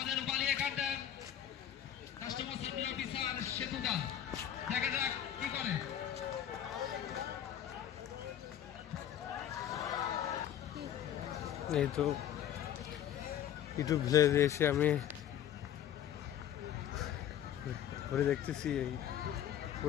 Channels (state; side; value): quieter; right; 10.5 dB